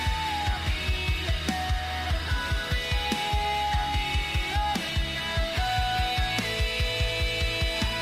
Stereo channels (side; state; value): both; identical; correlation 1.00